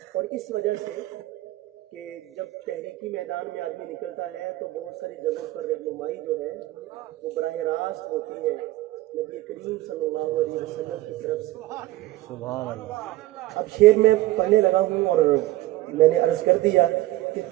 اور اس وجہ سے کہ جب تحریکی میدان میں آدمی نکلتا ہے تو بہت ساری جگہوں پر رہنمائی جو ہے وہ براہ راست ہوتی ہے نبی کریم صلی اللہ علیہ وسلم کی طرف سے. سبحان اللہ. اب شعر میں پڑھنے لگا ہوں اور میں نے عرض کر دیا کہ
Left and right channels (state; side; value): quieter; left; 16.8 dB